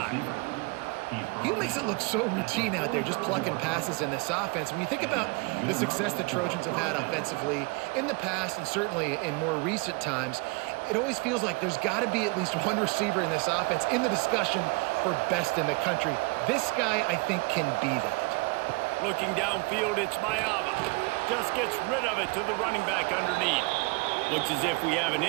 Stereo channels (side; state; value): left; quieter; 28.7 dB